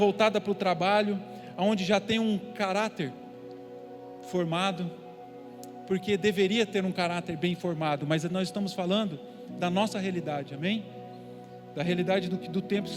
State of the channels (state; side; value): identical; both; correlation 1.00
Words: para o trabalho, onde já tem um caráter formado, porque deveria ter um caráter bem formado, mas nós estamos falando da nossa realidade, amém? Da realidade do tempo que